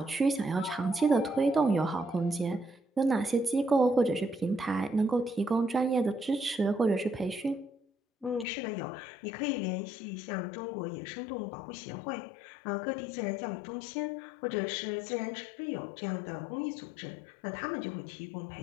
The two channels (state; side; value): drops out; right; at 8.5 s